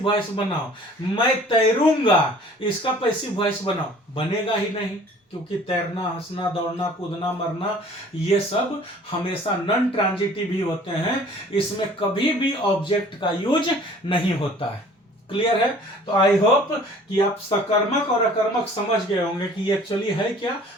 वॉइस बनाओ। मैं तैरूंगा, इसका पैसिव वॉइस बनाओ। बनेगा ही नहीं, क्योंकि तैरना, हंसना, दौड़ना, कूदना, मरना, ये सब हमेशा नॉन ट्रांजिटिव ही होते हैं। इसमें कभी भी ऑब्जेक्ट का यूज नहीं होता है। क्लियर है? तो आई होप कि आप सकर्मक और अकर्मक समझ गए होंगे कि एक्चुअली है क्या,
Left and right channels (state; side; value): normal; both; correlation 0.50